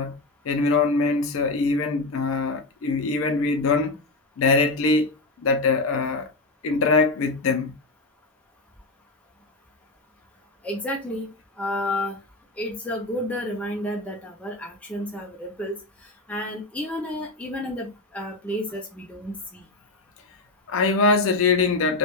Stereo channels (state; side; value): quieter; right; 3.1 dB